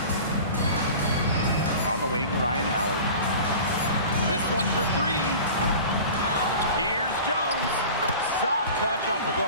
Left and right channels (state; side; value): inverted; both; correlation -0.38